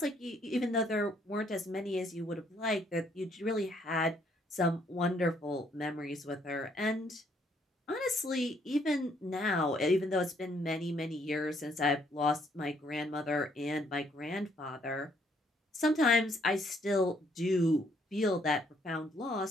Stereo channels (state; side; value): normal; both; correlation 0.68